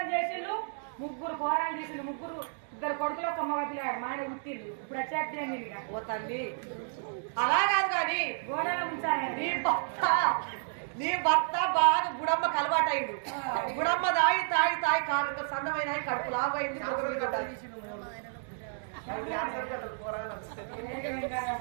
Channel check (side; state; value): left; silent; digital silence